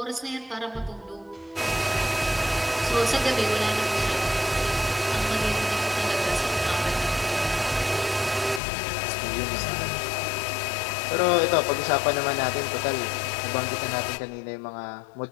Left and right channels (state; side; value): drops out; right; at 8.6 s